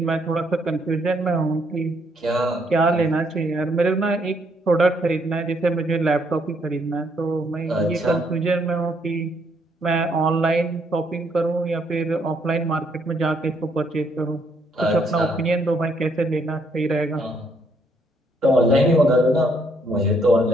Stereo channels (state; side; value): normal; both; correlation 0.71